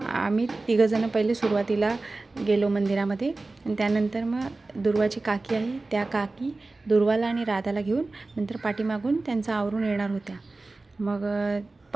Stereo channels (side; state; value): left; quieter; 3.3 dB